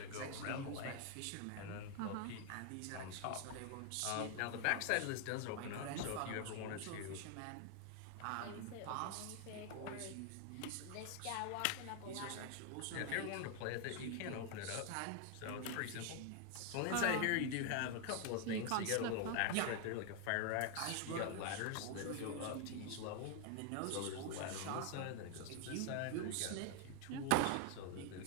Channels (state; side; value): different; both; correlation 0.00